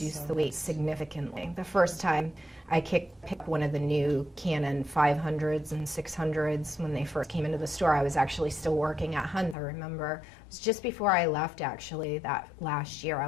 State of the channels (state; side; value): drops out; right; at 9.6 s